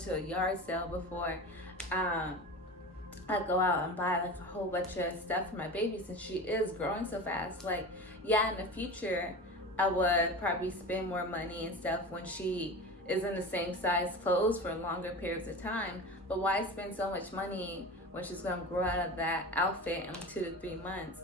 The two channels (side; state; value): both; normal; correlation 0.31